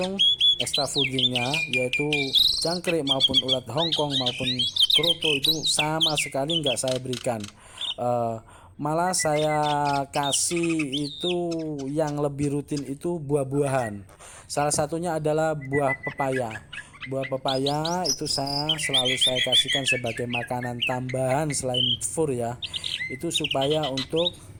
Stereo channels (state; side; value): identical; both; correlation 1.00